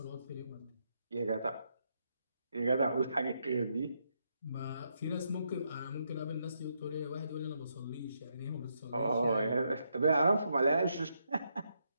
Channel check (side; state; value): both; inverted; correlation -0.79